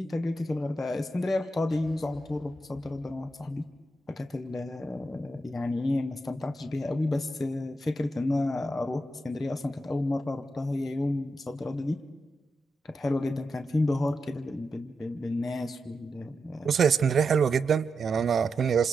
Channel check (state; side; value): normal; both; correlation 0.87